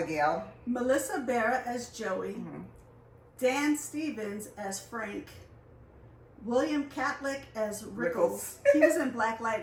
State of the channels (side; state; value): both; identical; correlation 1.00